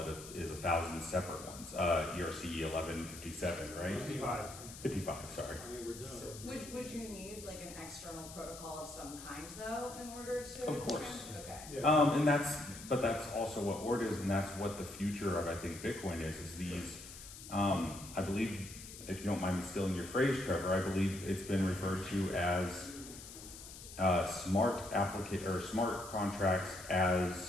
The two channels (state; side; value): noise; left; hiss, 14 dB below the sound